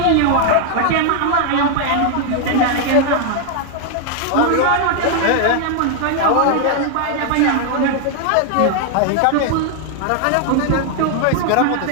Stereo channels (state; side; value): different; both; correlation 0.00